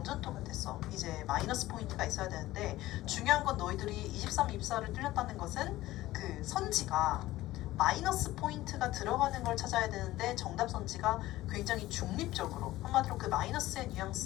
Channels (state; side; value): quieter; right; 16.5 dB